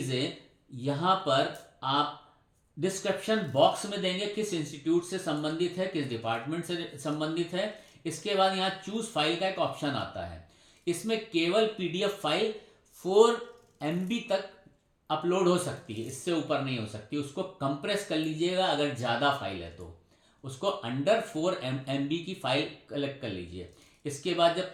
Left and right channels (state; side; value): identical; both; correlation 1.00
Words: यहाँ पर आप डिस्क्रिप्शन बॉक्स में देंगे, किस इंस्टीट्यूट से संबंधित है, किस डिपार्टमेंट से संबंधित है। इसके बाद यहाँ चूज फाइल का एक ऑप्शन आता है, इसमें केवल पीडीएफ फाइल 4 MB तक अपलोड हो सकती है, इससे ऊपर नहीं हो सकती। उसको कंप्रेस कर लीजिएगा, अगर ज़्यादा फाइल है तो उसको अंडर 4 MB की फाइल कलेक्ट कर लीजिए। इसके बाद जब